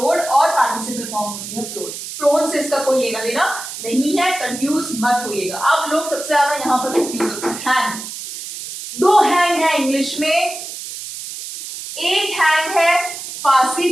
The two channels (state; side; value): noise; right; hiss, 9 dB below the sound